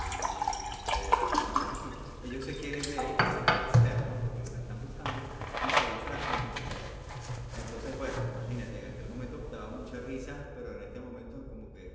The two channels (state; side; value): identical; both; correlation 1.00